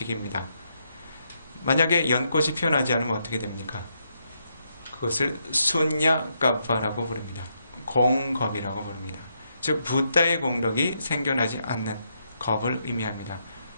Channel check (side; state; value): both; inverted; correlation -0.79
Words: 만약에 연꽃이 피어나지 않으면 어떻게 됩니까? 그것을 순야까파라고 부릅니다. 공겁이라고 부릅니다. 즉 부다의 공덕이 생겨나지 않는 겁을 의미합니다.